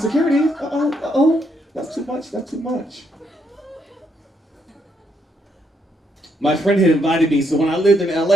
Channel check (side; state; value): both; normal; correlation 0.75